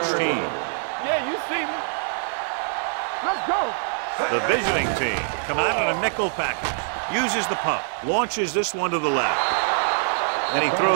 team. Yeah, you see me. Let's go. The visiting team come out in a nickel package. Uses the pump. Launches this one to the left. And he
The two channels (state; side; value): silent; left; 63 dB below the other